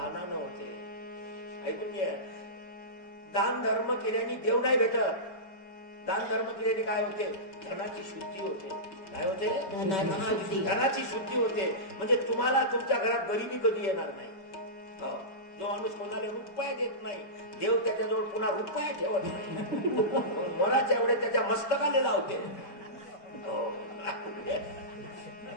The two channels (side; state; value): right; late; 5.2 ms